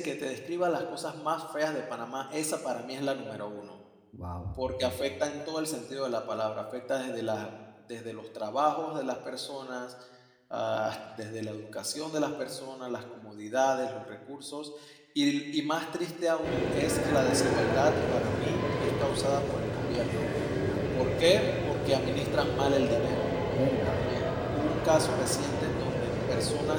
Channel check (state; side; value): identical; both; correlation 1.00